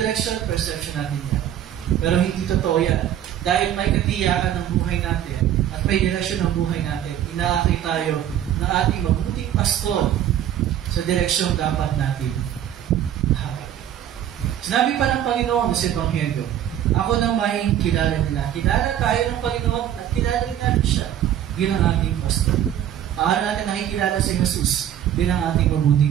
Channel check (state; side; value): quieter; left; 10.8 dB